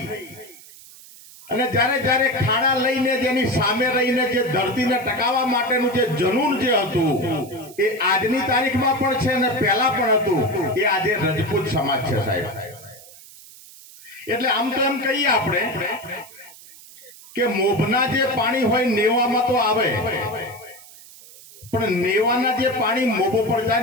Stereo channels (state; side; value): noise; right; hiss, 20 dB below the sound